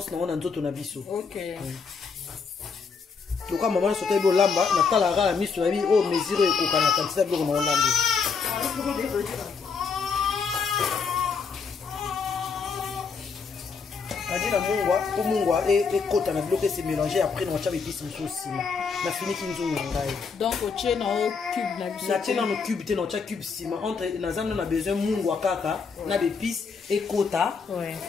na ona nzoto na biso. OK. Donc maman sote bo lamba na tala ra miso na bi o mesure ko kana quantité biloko na olande. Adina mungwa et kota na bloqué c'est mélangé après on tcha épices aussi na fini kinzungu ngai donc au tché na au cube na biso na tché na no cube te na tcha cube sima entre na zando na besoin mungwa kaka na épices et kota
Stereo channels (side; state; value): right; quieter; 5.4 dB